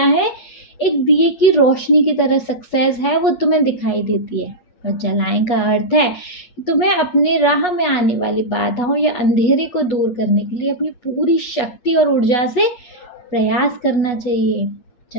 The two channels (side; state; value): right; late; 8.2 ms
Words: है? एक दिए की रोशनी की तरह सक्सेस है, वो तुम्हें दिखाई देती है। और जलाएं का अर्थ है कि तुम्हें अपने राह में आने वाली बाधाओं या अंधेरे को दूर करने के लिए अपनी पूरी शक्ति और ऊर्जा से प्रयास करना चाहिए,